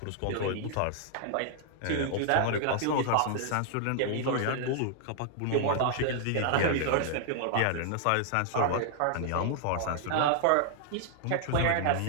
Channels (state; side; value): different; both; correlation -0.01